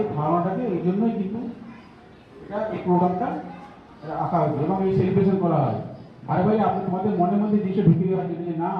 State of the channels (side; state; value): both; identical; correlation 1.00